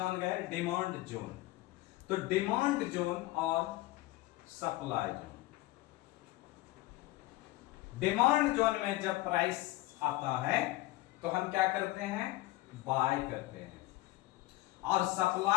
गए डिमांड जोन। तो डिमांड जोन और सप्लाई जोन, डिमांड जोन में जब प्राइस आता है तो हम क्या करते हैं, बाय करते हैं, और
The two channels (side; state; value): right; quieter; 18.0 dB